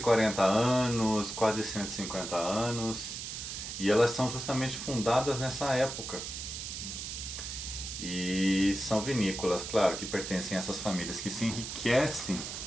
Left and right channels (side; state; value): right; noise; hiss, 7 dB below the sound